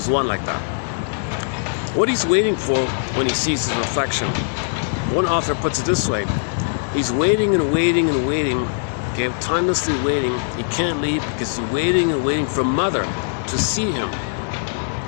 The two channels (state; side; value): silent; right; 65 dB below the other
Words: one like that. What he's waiting for when he sees his reflection, one author puts it this way: he's waiting and waiting and waiting, okay, timelessly waiting. He can't leave because he's waiting and waiting for mother to see him,